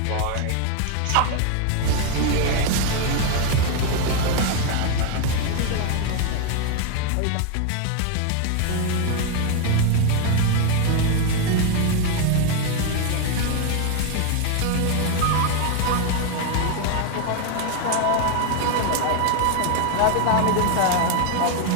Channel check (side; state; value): both; different; correlation 0.01